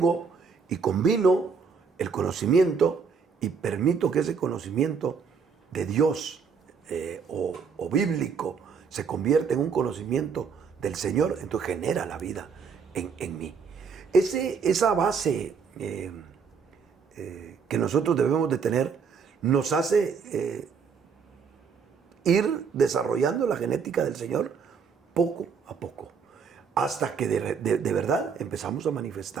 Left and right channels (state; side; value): quieter; left; 5.8 dB